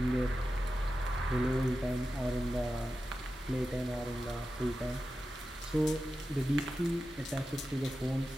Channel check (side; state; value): both; normal; correlation 0.92